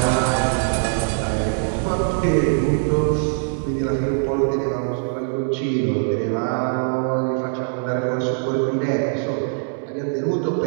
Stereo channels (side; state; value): left; silent; digital silence